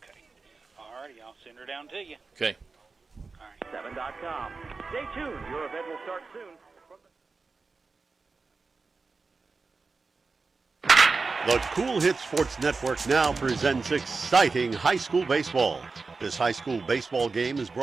All righty, I'll send her down to you. Okay. All right. 7.com. Stay tuned. Your event will start soon. The Cool Hit Sports Network now presents exciting high school baseball. This high school baseball game is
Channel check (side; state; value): left; quieter; 4.2 dB